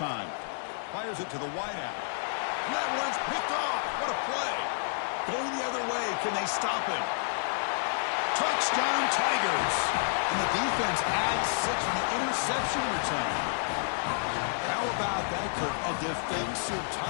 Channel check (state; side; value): silent; right; digital silence